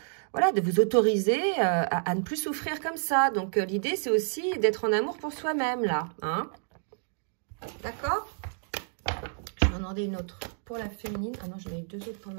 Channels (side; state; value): left; silent; 56 dB below the other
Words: Voilà, de vous autoriser à ne plus souffrir comme ça. Donc l'idée, c'est aussi d'être en amour pour soi-même, là. Hein, d'accord ? Je vais en demander une autre pour la féminine. Ah non, j'en ai eu 2 autres pour le